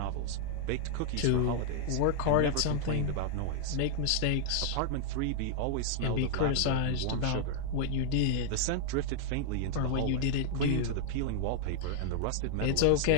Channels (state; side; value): different; both; correlation 0.00